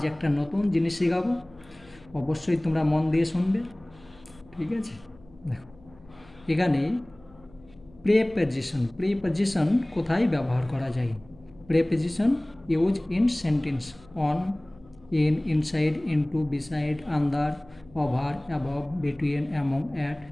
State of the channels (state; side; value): noise; left; hum, 25 dB below the sound